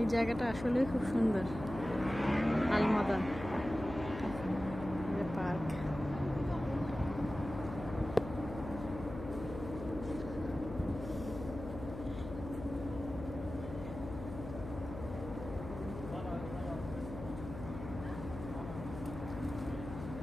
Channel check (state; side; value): noise; left; hum, 9 dB below the sound